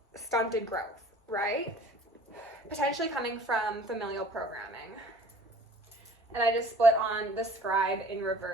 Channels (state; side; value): normal; both; correlation 0.49